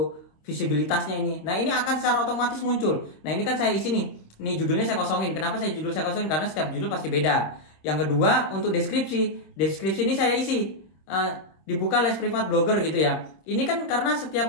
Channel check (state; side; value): late; right; 26 ms